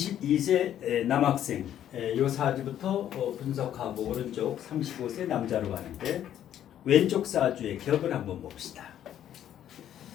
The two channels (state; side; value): quieter; right; 10.8 dB